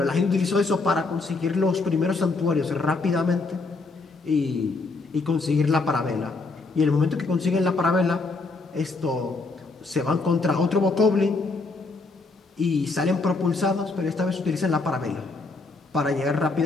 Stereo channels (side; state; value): right; quieter; 3.6 dB